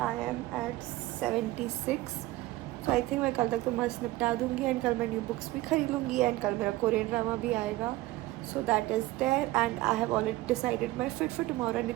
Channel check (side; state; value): left; quieter; 18.1 dB